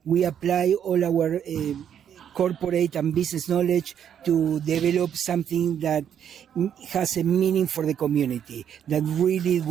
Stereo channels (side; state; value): left; quieter; 9.0 dB